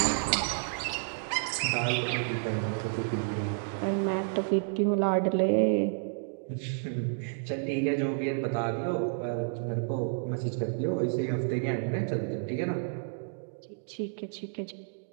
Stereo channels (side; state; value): left; silent; digital silence